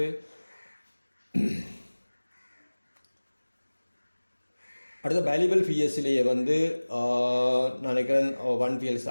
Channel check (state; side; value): inverted; both; correlation -1.00